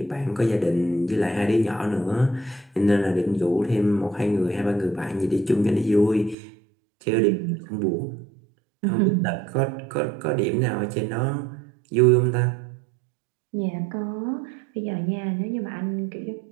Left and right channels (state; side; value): drops out; left; at 6.4 s